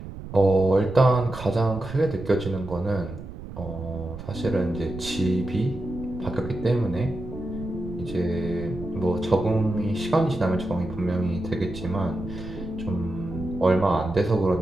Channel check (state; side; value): noise; right; rumble, 12 dB below the sound